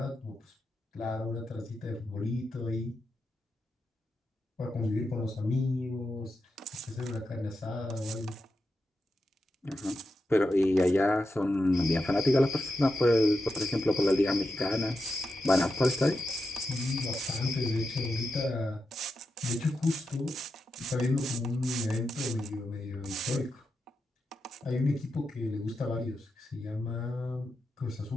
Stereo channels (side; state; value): both; normal; correlation 0.88